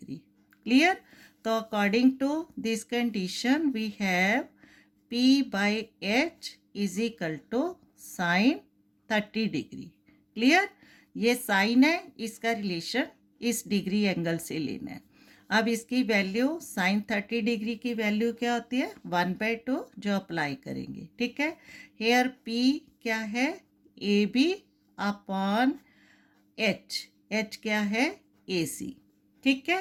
क्लियर। तो according to this condition we have P/H is equal to sine 30 degree, clear. ये साइन है, इसका रिलेशन इस डिग्री एंगल से लेना है। अब इसकी वैल्यू, साइन 30 डिग्री की वैल्यू क्या होती है, 1/2, जो अप्लाई करेंगे, ठीक है। हेयर P क्या है, AB अपॉन H क्या है, AC, ठीक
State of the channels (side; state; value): both; identical; correlation 1.00